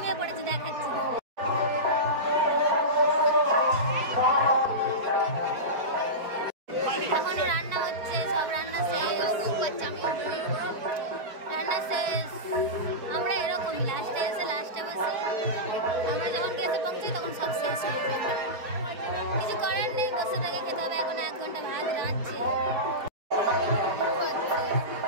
পড়েছে, দেখাচ্ছি। এখনো রান্না হচ্ছে, সব রান্না শেষ, রান্না শেষ। আমরা এরকমই লাস্টে এসে লাস্টে বসে, আমরা যখন গেছে পৌঁছাই তখন সব শেষ হয়ে যায়। কিছু করার নেই, বসে থেকে খেতে হবে। এখন 1 ঘন্টা ভাত রাঁধছে,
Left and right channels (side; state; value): left; late; 4.6 ms